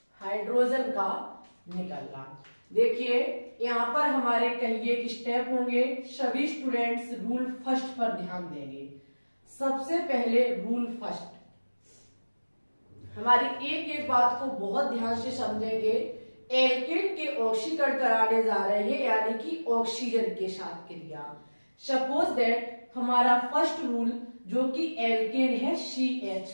हाइड्रोजन का निकलना। देखिए यहां पर हमारे कहिए कि स्टेप होंगे, सभी स्टूडेंट्स रूल फर्स्ट पर ध्यान देंगे। सबसे पहले रूल फर्स्ट, हमारी एक एक बात को बहुत ध्यान से समझेंगे। एल्केन के ऑक्सीकरण कराने जा रहे हैं, यानी कि ऑक्सीजन के साथ क्रिया। सपोज दैट हमारा फर्स्ट रूल जो कि एल्केन है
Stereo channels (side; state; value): both; inverted; correlation -1.00